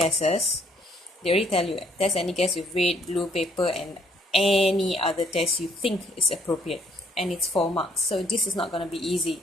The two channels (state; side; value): normal; both; correlation 0.66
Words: They already tell you test any gas with red, blue paper, and any other test you think is appropriate, and it's 4 marks. So this is not gonna be